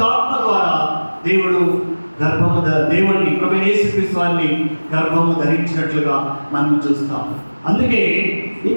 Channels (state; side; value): inverted; both; correlation -1.00